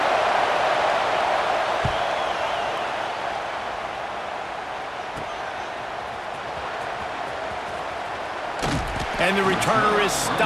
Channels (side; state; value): both; identical; correlation 1.00